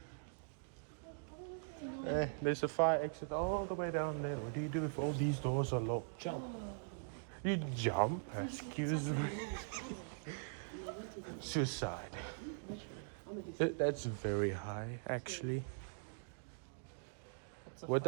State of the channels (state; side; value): silent; left; digital silence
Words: There's a fire exit all the way down there. What do you do if all these doors are locked? Jump. You jump? Excuse me. Suicide. That's very high, actually. What